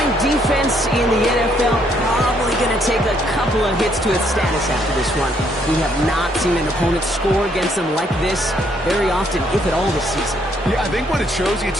defense in the NFL probably going to take a couple of hits to its status after this one. We have not seen an opponent score against them like this very often, if at all, this season. Yeah, I think what it shows you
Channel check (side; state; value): both; normal; correlation 0.70